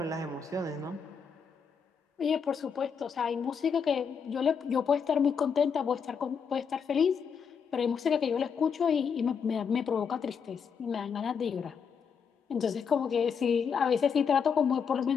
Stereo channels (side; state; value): right; quieter; 6.4 dB